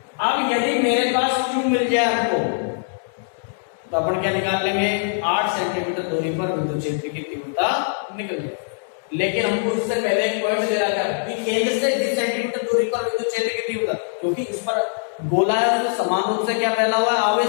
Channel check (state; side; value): silent; right; digital silence